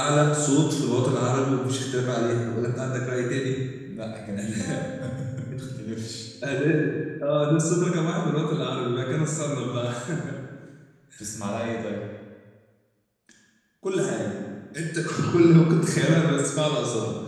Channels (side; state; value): both; identical; correlation 1.00